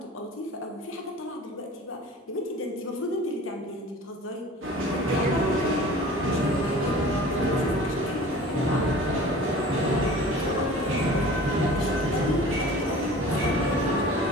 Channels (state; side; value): normal; both; correlation 0.42